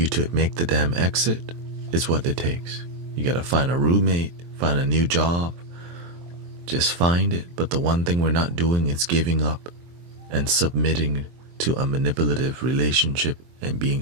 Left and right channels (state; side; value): late; left; 23 ms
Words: to make the damn exit is what it takes. You gotta find a roommate, find a new job, just find it. But the one thing we're not doing is giving up and submitting to a manipulative relationship and